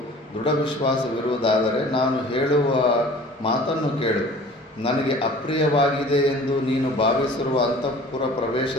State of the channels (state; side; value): normal; both; correlation 0.46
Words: ದೃಢ ವಿಶ್ವಾಸವಿರುವುದಾದರೆ ನಾನು ಹೇಳುವ ಮಾತನ್ನು ಕೇಳು. ನನಗೆ ಅಪ್ರಿಯವಾಗಿದೆ ಎಂದು ನೀನು ಭಾವಿಸಿರುವ ಅಂತಃಪುರ